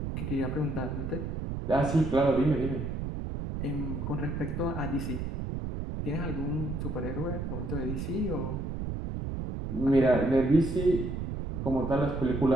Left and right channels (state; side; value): noise; right; rumble, 4 dB below the sound